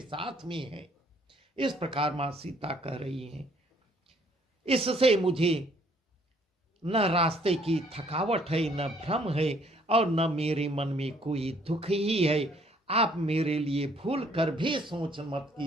में है। इस प्रकार मां सीता कह रही हैं। इससे मुझे न रास्ते की थकावट है, न भ्रम है, और न मेरे मन में कोई दुख ही है। आप मेरे लिए भूल कर भी सोच मत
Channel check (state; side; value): normal; both; correlation 0.63